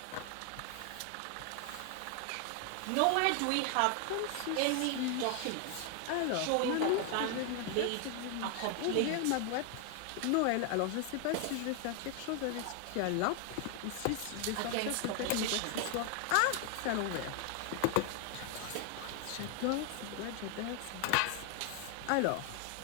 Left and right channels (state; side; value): different; both; correlation 0.00